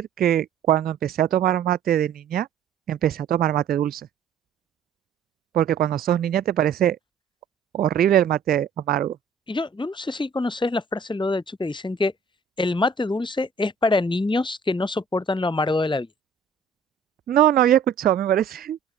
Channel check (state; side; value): quieter; left; 5.3 dB